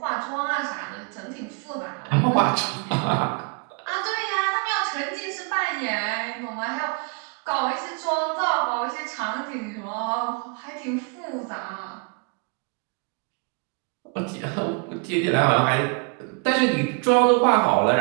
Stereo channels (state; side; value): quieter; left; 37.0 dB